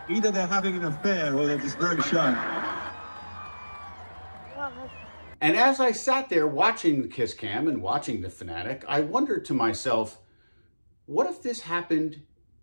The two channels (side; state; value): both; inverted; correlation -1.00